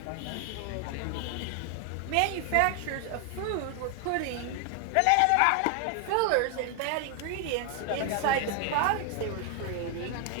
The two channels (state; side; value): different; both; correlation 0.00